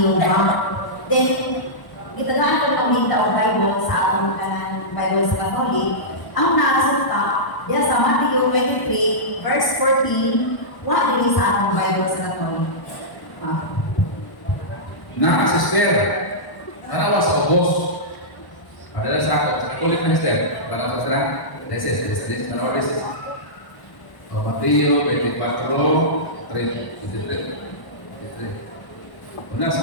Then, gitagaan ko ng Minta o Bible sa atong Bible sa Catholic. Ang naasunta, diya sa Matthew 23, verse 14, wala din sa atong Bible sa Catholic. Sister, tanawa sa ubos. Padahal sa ako, sa kulit na sister. Tanawa sa sila, deses, tanawa deses. O Mateo 24, 23. Una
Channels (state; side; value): late; right; 1.1 ms